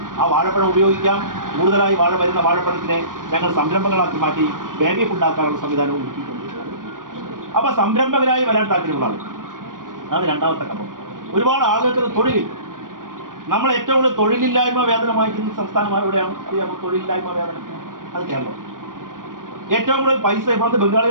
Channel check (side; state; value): left; late; 0.90 ms